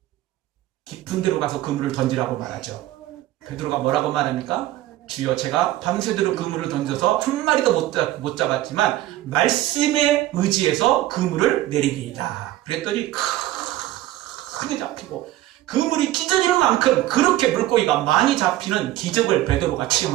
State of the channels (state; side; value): quieter; left; 15.0 dB